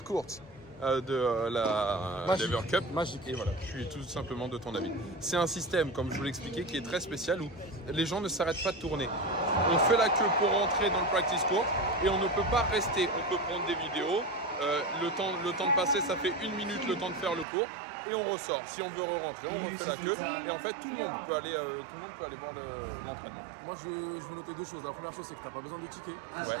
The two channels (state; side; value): drops out; left; at 17.4 s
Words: de la Lever Cup. Magique. Et voilà, je suis tout simplement de ton avis. C'est un système, comme je vous l'expliquais, qui est très spécial où les gens ne s'arrêtent pas de tourner. On fait la queue pour rentrer dans le practice court et on ne peut pas rester. On peut prendre des vidéos. Le temps de passer, ça fait 1 minute le temps de faire le cours. Et on ressort. Si on veut re-rentrer, on refait la queue. Et en fait, tout le monde peut aller voir l'entraînement. Moi, je veux noter 2 choses. La première chose, c'est que tu n'as pas besoin de ticket.